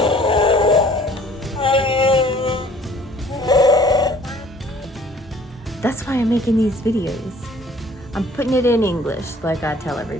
That's why I'm making these videos. I'm putting it in English like I tell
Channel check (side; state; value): both; normal; correlation 0.54